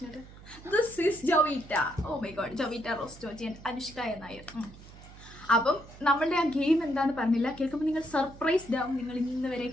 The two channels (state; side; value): noise; right; hum, 19 dB below the sound